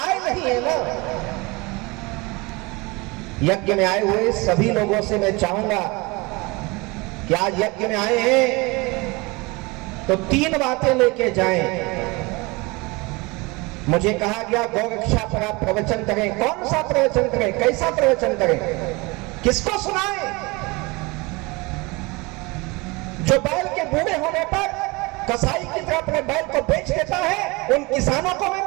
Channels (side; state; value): left; quieter; 25.4 dB